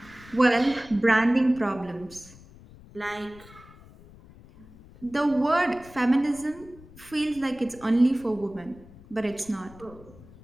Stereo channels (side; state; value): left; noise; rumble, 22 dB below the sound